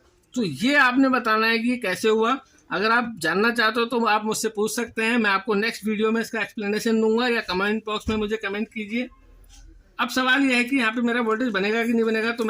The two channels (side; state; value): both; identical; correlation 1.00